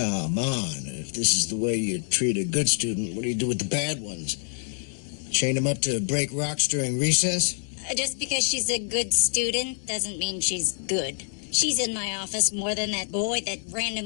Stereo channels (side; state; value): right; silent; digital silence